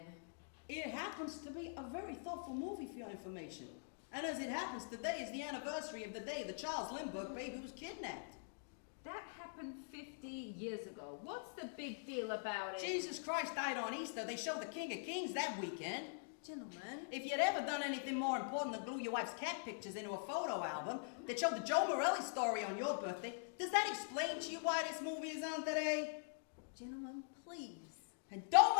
It happens to be a very thoughtful movie for your information. And as it happens, today is the anniversary of the day the Charles Lindbergh baby was kidnapped. That happened 50 years ago. What's the big deal about it? Jesus Christ died on Easter. They showed the King of Kings that weekend. Gentlemen. If you'd ever done anything more important than glue your wife's cat pictures into a photo album that showed the Joe Morelli story on your birthday, does that explain to you why this movie is on today? Gentlemen, please. And don't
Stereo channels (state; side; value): silent; right; digital silence